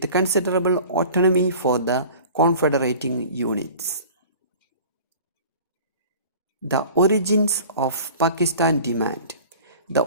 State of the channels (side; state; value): both; inverted; correlation -0.43